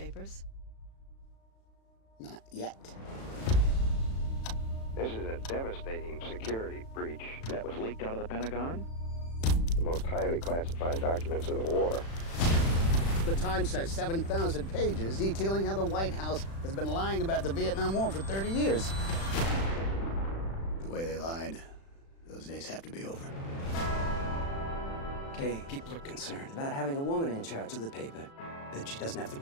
Not yet. This is a devastating security breach that was leaked out of the Pentagon. The most highly classified documents of the war. The Times has 7,000 pages detailing how the White House has been lying about the Vietnam War for 30 years. The way they lied, those days have to be over. Okay, people are concerned about having a woman in charge of the paper, that she doesn't have the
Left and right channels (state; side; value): late; right; 36 ms